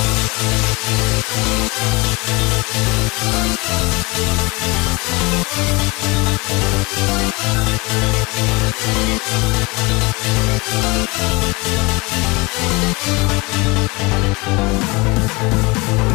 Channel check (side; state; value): right; quieter; 25.7 dB